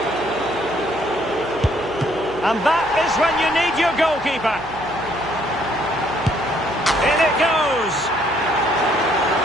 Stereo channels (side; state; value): right; noise; hum, 18 dB below the sound